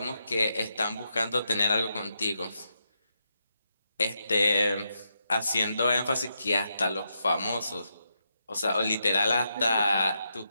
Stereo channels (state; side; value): inverted; both; correlation -0.83